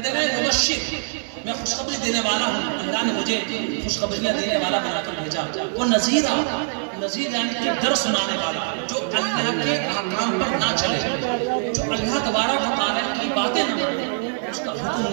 ہیں مبشر، میں خوشخبری دینے والا ہوں، اللہ نے مجھے خوشخبریاں دینے والا بنا کر بھیجا۔ وہ نذیر یعنی کہ ڈر سنانے والا، جو اللہ کے احکام پر نہ چلے، جو اللہ تبارک و تعالیٰ کی باتیں نہ مانے، اس کا حکم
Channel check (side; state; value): left; silent; digital silence